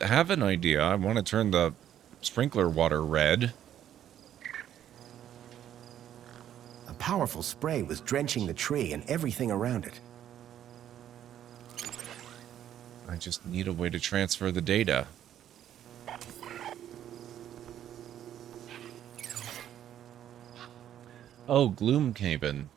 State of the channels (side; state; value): left; quieter; 10.9 dB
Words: have an idea. I want to turn the sprinkler water red. A powerful spray was drenching the tree and everything around it. I just need a way to transfer the data. Oh, Gloomhaven.